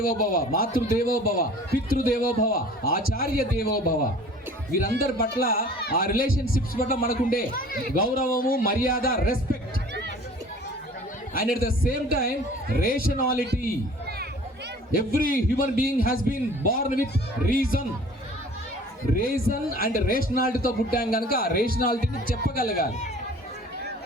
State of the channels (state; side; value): normal; both; correlation 0.47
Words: మాతృదేవోభవ, పితృదేవోభవ, ఆచార్య దేవోభవ, వీరందరి పట్ల ఆ రిలేషన్షిప్స్ పట్ల మనకుండే గౌరవము, మర్యాద, respect. And at the same time rationality. Every human being has been born with reason and రేషనాలిటీతో పుట్టాం కనుక ఆ రేషనాలిటీని చెప్పగలగాలి.